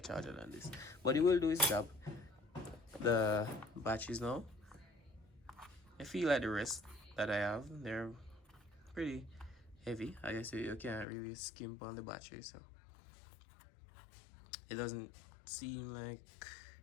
charger than this. But it will do its job. The batteries now, I feel like the rest that I have, they're pretty heavy. I guess you can't really skimp on the battery, so it doesn't seem like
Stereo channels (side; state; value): right; drops out; at 11.1 s